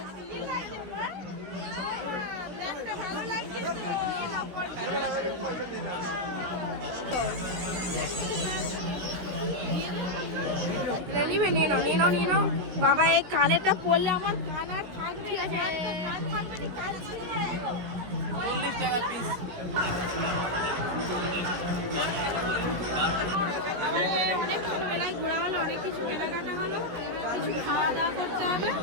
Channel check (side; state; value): left; late; 17 ms